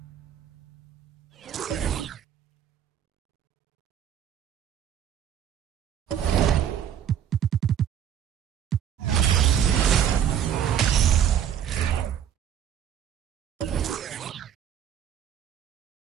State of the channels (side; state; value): left; quieter; 9.5 dB